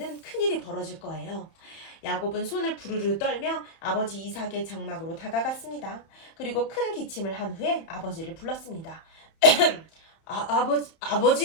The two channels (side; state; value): right; late; 31 ms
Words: 큰일이 벌어질 거예요. 야곱은 손을 부르르 떨며 아버지 이삭의 장막으로 다가갔습니다. 그리고 큰 기침을 한 후에 아버지를 불렀습니다.